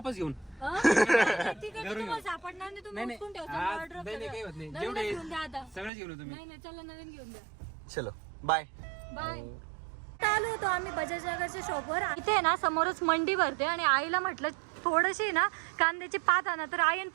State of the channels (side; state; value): left; drops out; at 5.9 s